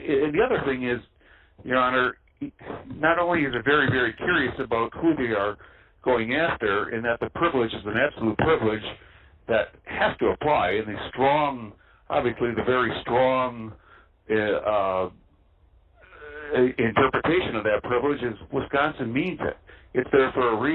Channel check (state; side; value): identical; both; correlation 1.00